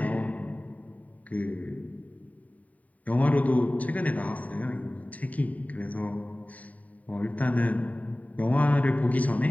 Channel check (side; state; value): right; late; 0.070 ms